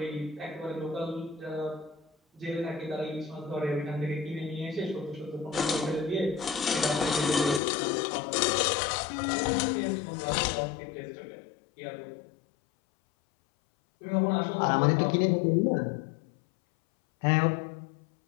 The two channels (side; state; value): right; drops out; at 7.6 s